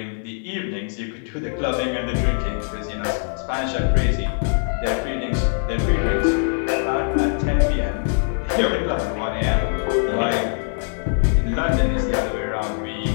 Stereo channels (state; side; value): silent; right; digital silence